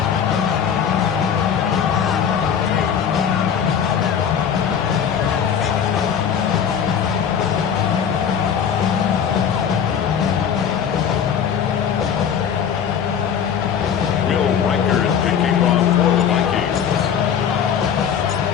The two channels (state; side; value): quieter; right; 8.0 dB